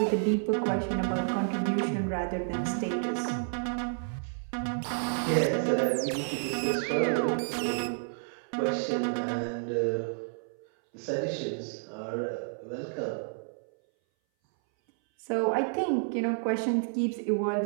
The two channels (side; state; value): left; silent; 58 dB below the other